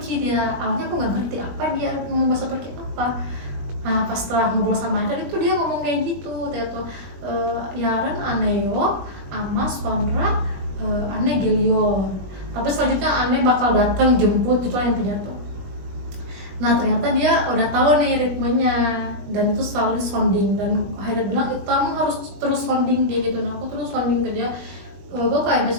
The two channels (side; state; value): left; late; 21 ms